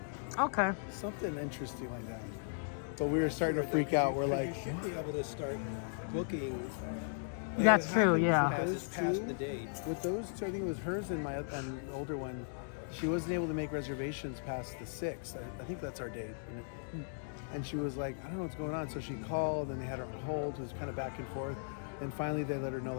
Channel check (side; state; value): right; silent; digital silence